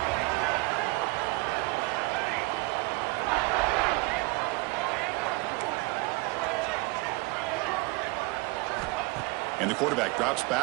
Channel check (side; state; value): left; quieter; 25.0 dB